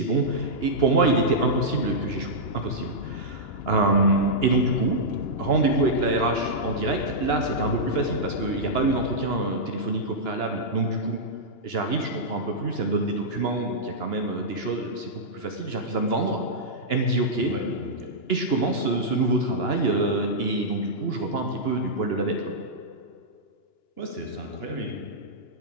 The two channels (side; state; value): right; late; 2.9 ms